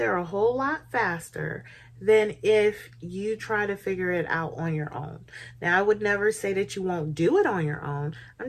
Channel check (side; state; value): both; identical; correlation 1.00